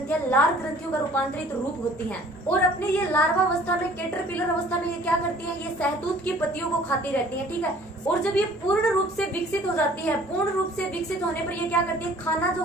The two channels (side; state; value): both; normal; correlation 0.53